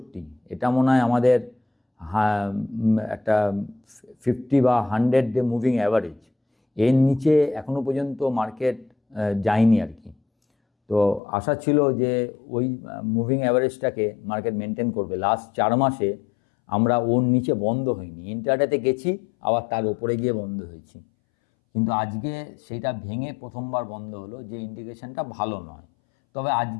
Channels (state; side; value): drops out; right; at 11.2 s